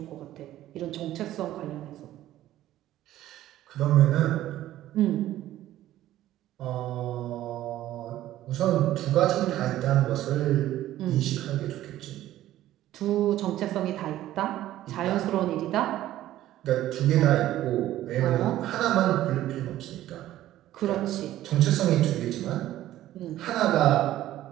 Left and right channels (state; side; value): quieter; left; 13.9 dB